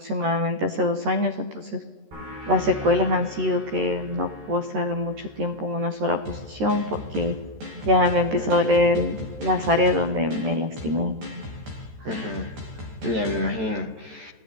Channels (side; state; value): left; late; 13 ms